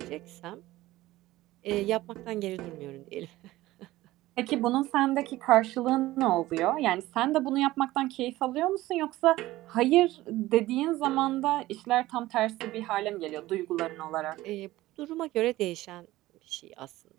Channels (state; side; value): quieter; left; 17.0 dB